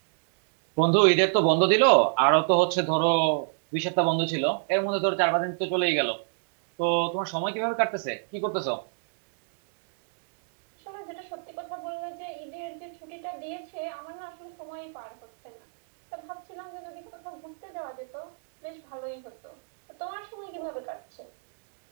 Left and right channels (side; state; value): left; silent; digital silence